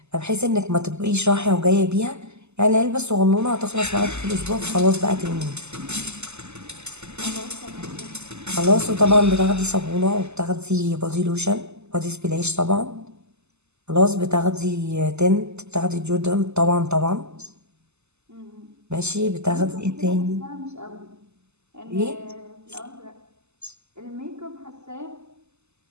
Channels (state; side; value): late; left; 0.81 ms